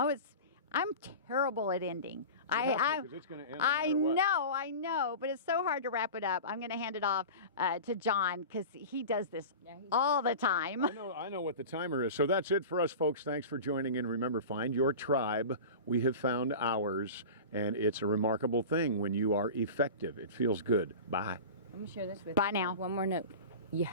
I'm terrible at ending. Because it's gonna end no I matter what. I know, but it's so hard to wrap it up. I'm going to hand it off to John because he does this all the time. I know what the timer is. So that's it for us, folks. Thanks for joining in. Remember, find your tribe. We have found ours, and it's a remarkable thing when you are effective. It feels good. Bye. Let me share this with Bye you. now. One more note. You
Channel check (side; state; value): both; inverted; correlation -0.32